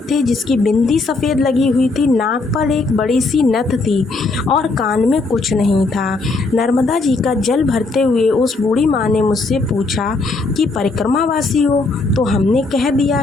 थे, जिसकी बिंदी सफ़ेद लगी हुई थी, नाक पर एक बड़ी सी नथ थी और कान में कुछ नहीं था। नर्मदा जी का जल भरते हुए उस बूढ़ी माँ ने मुझसे पूछा कि परिक्रमावासी हो? तो हमने कह दिया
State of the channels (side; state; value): right; quieter; 3.6 dB